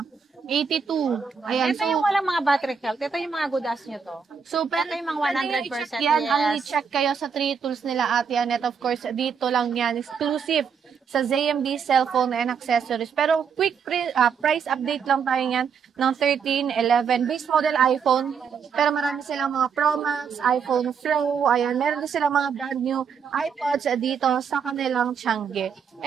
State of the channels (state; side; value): quieter; left; 6.5 dB